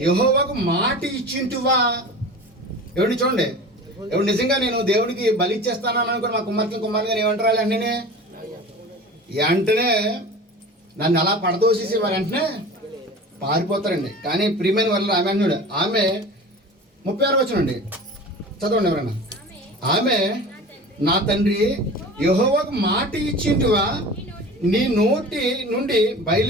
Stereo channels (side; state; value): both; normal; correlation 0.37